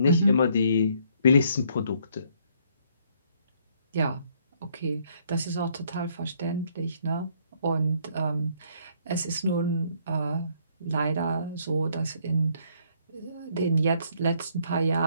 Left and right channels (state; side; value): inverted; both; correlation -0.66